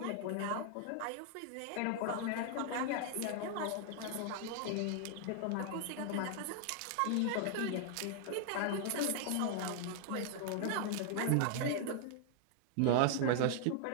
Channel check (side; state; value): both; different; correlation 0.00